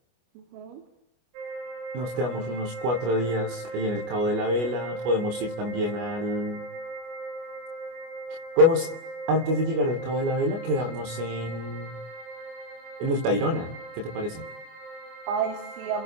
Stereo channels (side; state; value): left; late; 24 ms